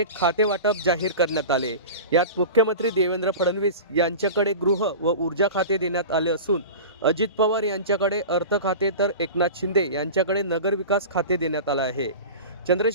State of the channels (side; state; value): both; inverted; correlation -0.32